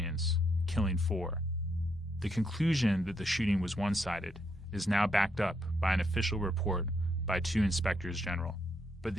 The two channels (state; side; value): normal; both; correlation 0.76